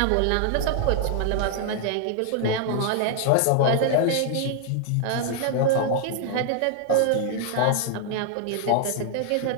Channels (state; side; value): different; both; correlation 0.00